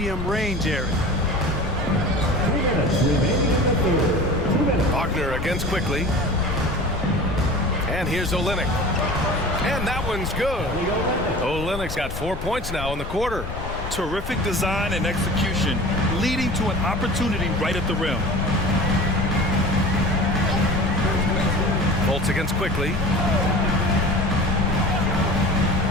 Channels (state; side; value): noise; left; rumble, 8 dB below the sound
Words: range area. Wagner against quickly. And here's Olynyk. And that one's good. Olynyk's got 4 points now in the quarter. Terrific design and execution, leading to an opportunity right at the rim. Bolts against quickly.